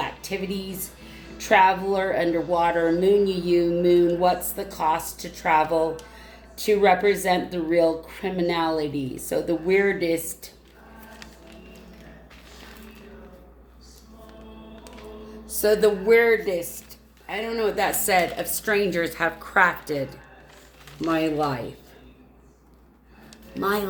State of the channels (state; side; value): identical; both; correlation 1.00